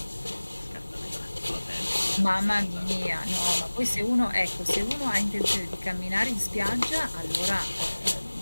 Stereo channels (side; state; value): both; inverted; correlation -1.00